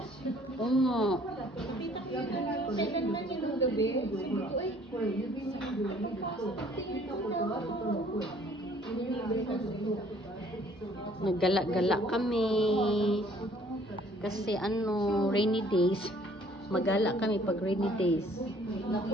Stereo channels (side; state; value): both; normal; correlation 0.58